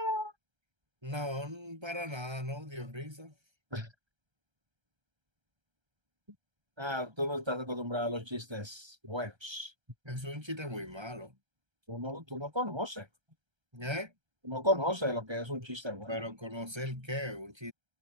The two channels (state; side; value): late; left; 1.3 ms